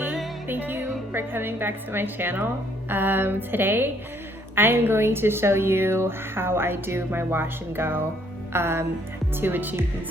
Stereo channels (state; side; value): normal; both; correlation 0.66